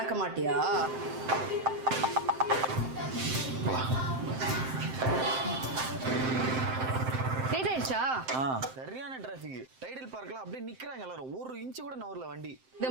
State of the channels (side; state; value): left; late; 7.7 ms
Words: மாட்டியா? போலாம். லேட் ஆயிடுச்சா? சரியான டிராஃபிக். டைடல் பார்க்ல அப்படியே நிக்கிறாங்க எல்லாரும். ஒரு இன்ச் கூட நவர்ல வண்டி. இதை